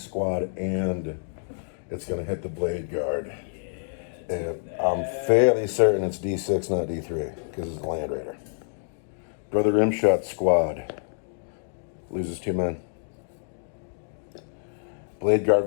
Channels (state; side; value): silent; right; digital silence